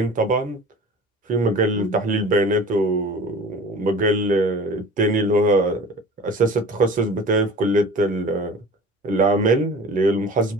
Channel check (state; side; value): normal; both; correlation 0.40